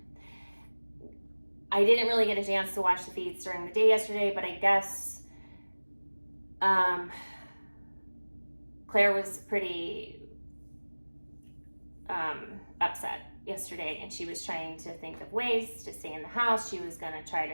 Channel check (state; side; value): inverted; both; correlation -1.00